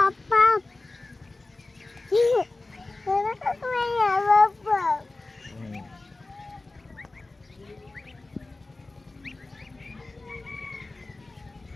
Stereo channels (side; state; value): right; quieter; 3.2 dB